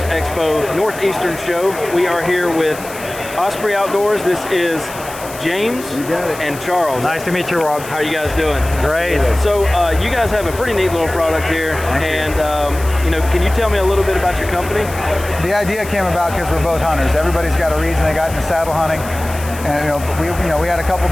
Expo Northeastern show. We are here with Osprey Outdoors. This is James and Charles. Nice to meet you, Rob. How are you guys doing? Great. So you guys have a pretty neat little product here, and can you tell me a little bit about your company? The idea came about because we're both hunters. Everybody's got a reason they got into saddle hunting, and we had a couple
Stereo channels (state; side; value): noise; left; hiss, 15 dB below the sound